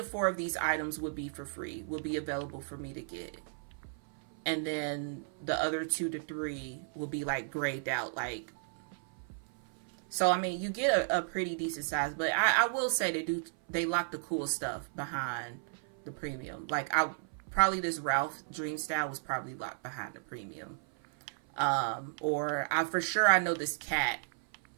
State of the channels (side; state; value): left; silent; 55 dB below the other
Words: 4 of these items would be for free, would be available for me to get. And then the other 2 to 3 will be like grayed out, like. So I mean, you get a pretty decent size, but I will say they lock the cool stuff behind the premium. Like probably this Ralph Dream Style was probably locked behind the premium. Or I know this cat